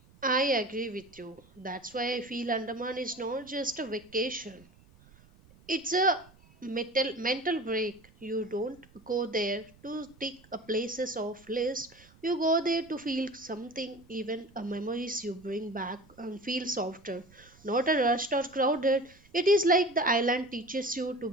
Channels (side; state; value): right; noise; rumble, 27 dB below the sound